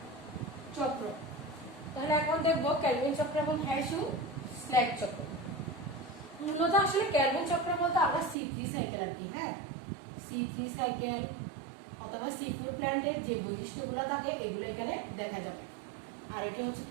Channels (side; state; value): left; drops out; at 8.3 s